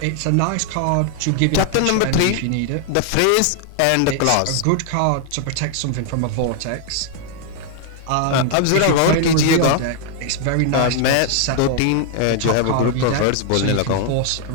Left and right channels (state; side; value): different; both; correlation 0.00